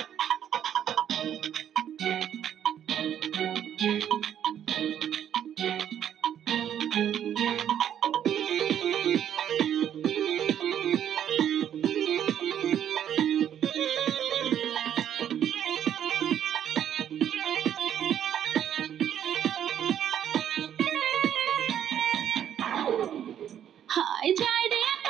হায় যায় রে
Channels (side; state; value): left; quieter; 9.9 dB